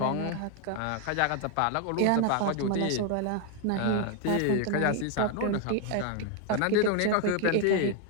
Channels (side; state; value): both; different; correlation 0.01